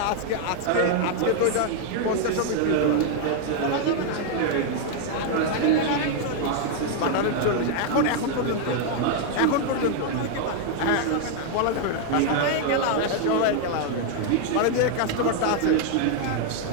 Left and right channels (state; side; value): different; both; correlation 0.00